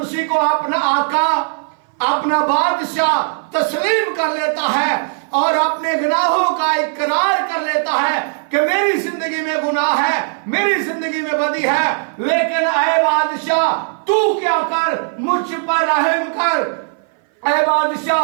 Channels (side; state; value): left; silent; 60 dB below the other